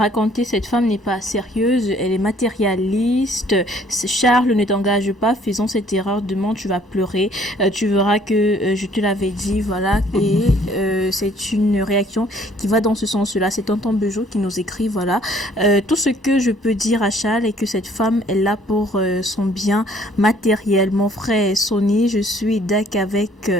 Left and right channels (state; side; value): normal; both; correlation 0.60